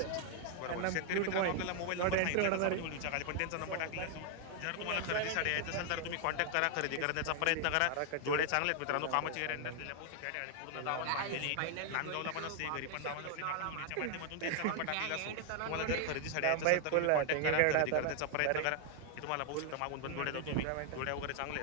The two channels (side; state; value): both; different; correlation 0.00